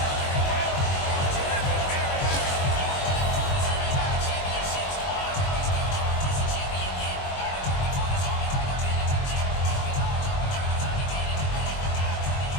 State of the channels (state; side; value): late; right; 22 ms